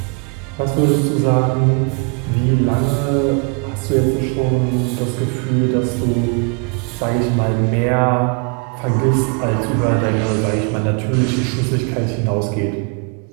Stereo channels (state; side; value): quieter; left; 35.5 dB